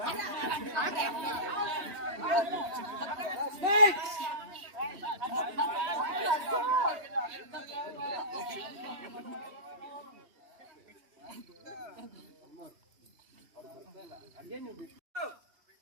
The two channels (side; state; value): left; late; 3.2 ms